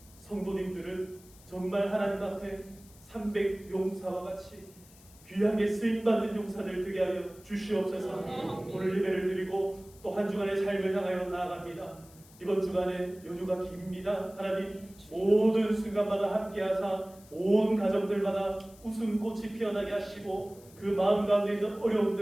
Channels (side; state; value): left; noise; hiss, 24 dB below the sound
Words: 성도님들은 정말 하나님 앞에 300용사와 같이 귀하게 쓰임받는 용사들 되게 하여 주시옵소서. 오늘 예배를 드리고 또 한 주간의 삶을 향하여 나아갑니다. 이번 주간에 연휴가 깁니다. 하나님 모든 순간마다 함께하사 온 가정들마다 웃음꽃이 피어나게 하시고 그 마음 가운데 있는